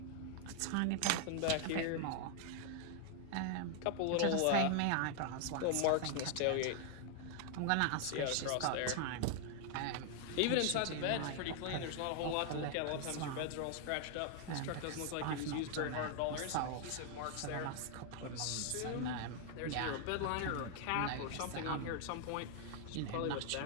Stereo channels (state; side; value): different; both; correlation 0.00